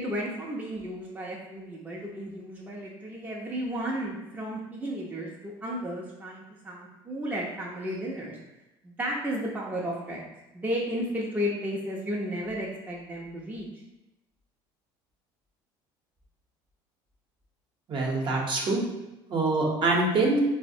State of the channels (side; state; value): both; normal; correlation 0.46